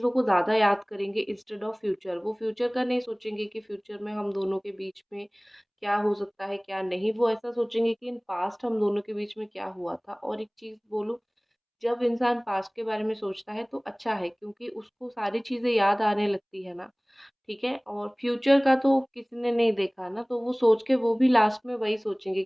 को ज़्यादा याद करेंगे इंस्टेड ऑफ फ्यूचर। वो फ्यूचर का नहीं सोचेंगे कि फ्यूचर में हम दोनों के बीच में क्या हो सकता है, क्या नहीं। वो ऐसा सोचेंगे कि इन पास्ट हम दोनों के बीच में क्या हुआ था। और एक चीज़ बोलूँ, जब इंसान पास्ट के बारे में सोचता है तो अच्छा है, क्योंकि उसको सारी चीज़ें याद आने लगती है ना, ठीक है? और फ्यूचर का तो किसी ने नहीं देखा ना, तो वो सोच के वो भी लास्ट में वही सोचेंगे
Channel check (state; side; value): identical; both; correlation 1.00